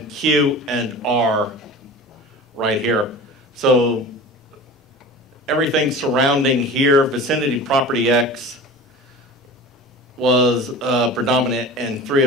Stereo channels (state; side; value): normal; both; correlation 0.36